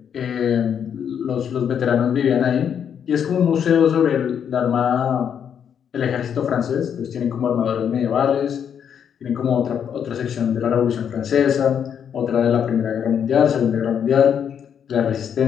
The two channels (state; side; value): quieter; right; 8.2 dB